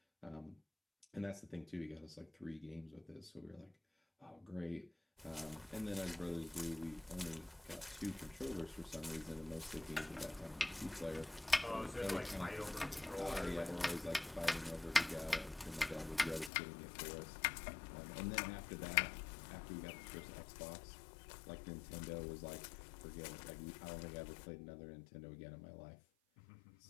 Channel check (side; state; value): right; drops out; at 16.5 s